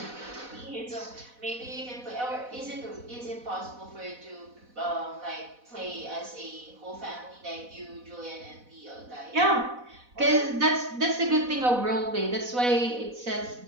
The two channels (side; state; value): left; late; 4.1 ms